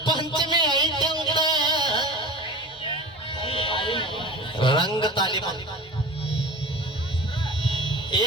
ಪಂಚಮಿ ಐತೆ ಅಂತ ರಂಗ ತಾಲೀಮ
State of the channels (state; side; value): normal; both; correlation 0.34